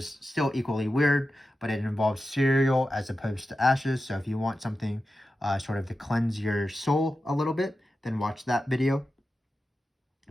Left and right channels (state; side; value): normal; both; correlation 0.92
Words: still equally weird, but it involves cereal as opposed to ashes. So if you want something sort of to cleanse your soul a little bit, then watch that video.